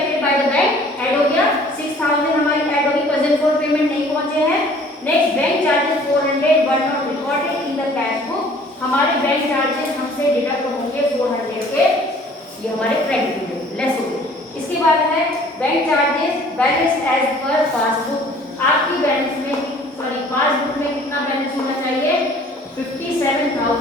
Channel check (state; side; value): normal; both; correlation 0.53